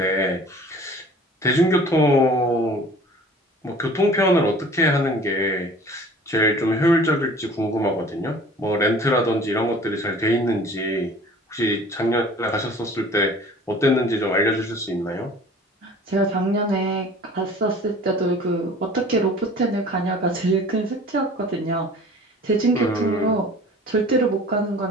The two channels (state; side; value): normal; both; correlation 0.46